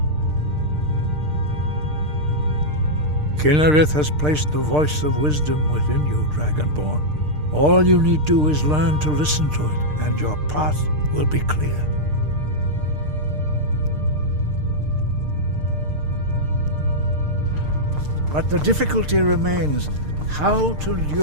Kynareth has placed the voice of wisdom within you, Dragonborn. All you need do is learn to listen to it, and your path will be clear. But the difficulty remains how to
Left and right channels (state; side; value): late; left; 6.6 ms